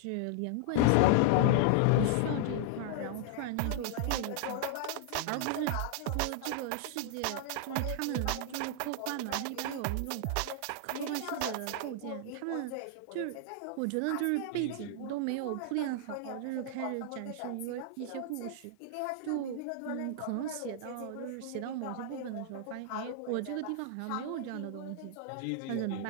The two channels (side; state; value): both; different; correlation 0.00